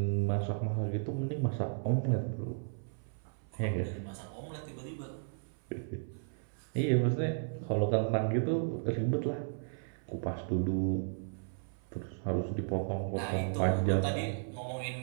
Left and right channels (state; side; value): silent; left; 55 dB below the other